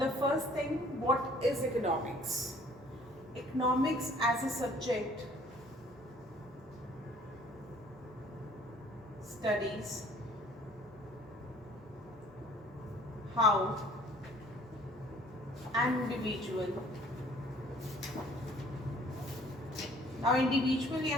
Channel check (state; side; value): noise; right; hum, 28 dB below the sound